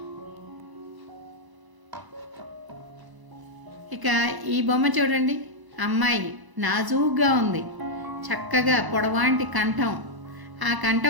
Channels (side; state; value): left; late; 1.0 ms